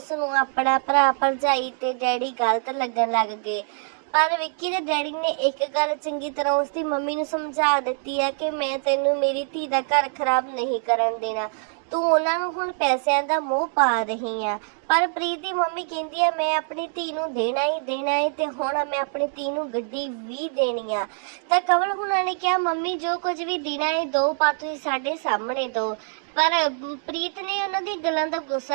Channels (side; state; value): left; silent; 60 dB below the other